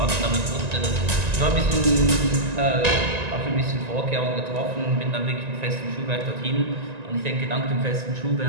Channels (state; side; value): late; left; 1.9 ms